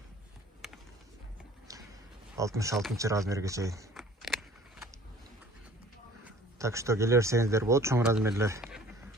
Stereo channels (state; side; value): normal; both; correlation 0.51